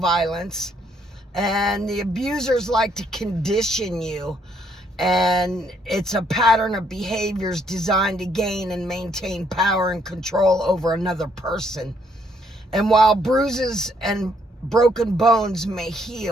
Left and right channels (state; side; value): normal; both; correlation 0.70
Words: and the abusers like to condition you. And it's a pattern of behaviors designed to gain and maintain power and control over another person. And while bruises and broken bones may